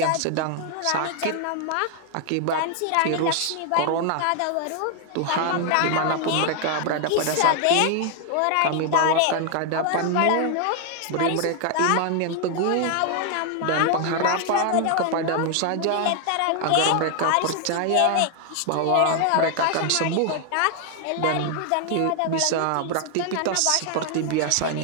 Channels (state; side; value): different; both; correlation 0.00